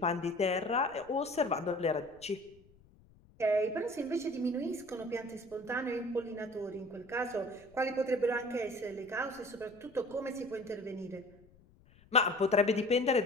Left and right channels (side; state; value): left; noise; rumble, 27 dB below the sound